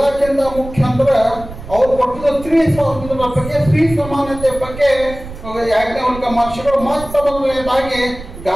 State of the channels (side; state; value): right; noise; rumble, 13 dB below the sound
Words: ಮುಖ್ಯ ಅಂದ್ರೆ ಅವ್ರು ಕೊಟ್ಟಿದ್ದ ಸ್ತ್ರೀ ಸ್ವಾತಂತ್ರ್ಯದ ಬಗ್ಗೆ, ಸ್ತ್ರೀ ಸಮಾನತೆ ಬಗ್ಗೆ ಯಾಜ್ಞವಲ್ಕ್ಯ ಮಹರ್ಷಿಗಳು ಮತ್ತ ಮೊದಲನೇದಾಗಿ